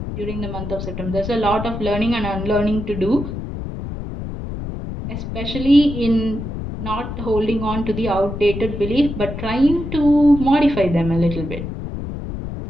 during the month of September. There's a lot of learning and unlearning to do, especially in not holding on to the outdated belief but trying to modify them a little bit.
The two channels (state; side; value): noise; left; rumble, 7 dB below the sound